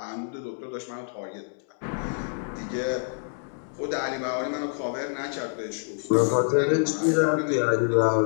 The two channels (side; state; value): right; silent; 60 dB below the other